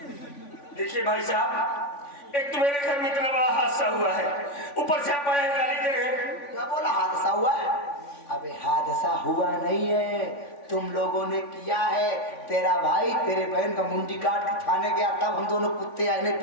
देखिए भाई साहब, एक तो मेरे घर में इतना बड़ा हादसा हुआ है, ऊपर से आप आए गाली दे रहे हैं। क्या बोला हादसा हुआ है? अबे हादसा हुआ नहीं है, तुम लोगों ने किया है। तेरा भाई तेरे बहन का मुंडी काट के थाने गया, तब हम दोनों कुत्ते आए नहीं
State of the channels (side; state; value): right; late; 3.5 ms